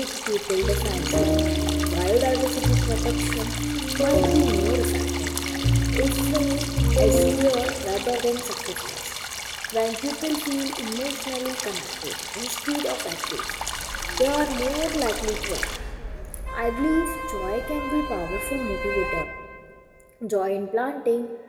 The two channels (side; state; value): both; identical; correlation 1.00